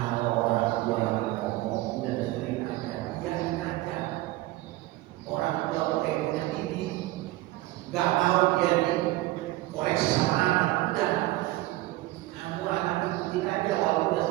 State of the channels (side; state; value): left; quieter; 17.9 dB